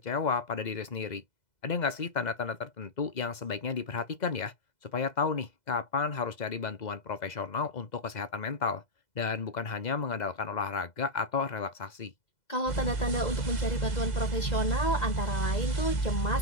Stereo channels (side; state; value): right; late; 2.0 ms